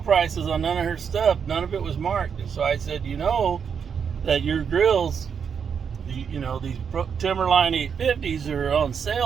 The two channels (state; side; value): quieter; left; 6.9 dB